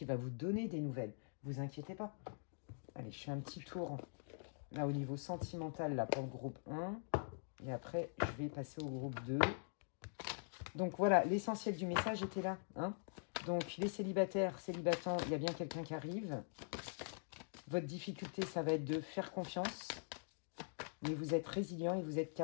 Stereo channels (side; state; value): right; silent; digital silence